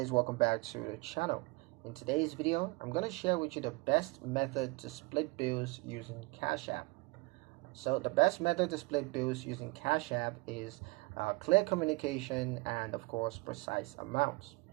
welcome back to the channel. In today's video, I'm going to share with you the best method to split bills using Cash App. So the best method to split bills using Cash App is clear communication and of course precise amounts.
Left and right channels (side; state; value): left; quieter; 25.6 dB